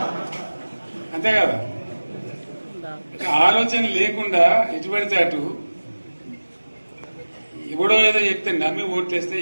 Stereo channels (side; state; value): both; inverted; correlation -1.00